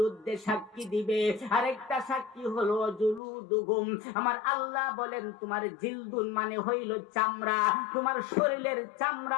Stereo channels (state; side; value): drops out; right; at 3.2 s